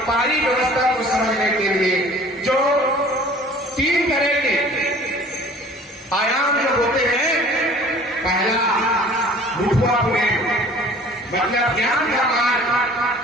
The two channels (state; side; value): normal; both; correlation 0.49